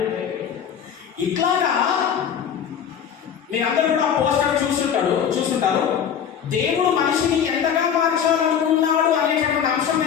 ఇట్లాగా మీరందరూ కూడా పోస్టర్ చూస్తుంటారు. దేవుడు మనిషిని ఎంతగా మార్చాలనుకున్నాడు అనేటటువంటి అంశం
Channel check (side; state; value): right; quieter; 8.2 dB